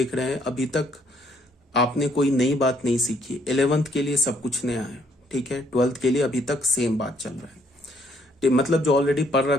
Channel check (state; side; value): normal; both; correlation 0.68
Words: रहे हैं, अभी तक आपने कोई नई बात नहीं सीखी। 11th के लिए सब कुछ नया है, ठीक है, 12th के लिए अभी तक सेम बात चल रहा है, मतलब जो ऑलरेडी पढ़